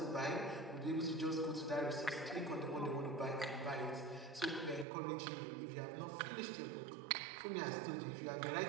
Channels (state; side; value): drops out; left; at 4.9 s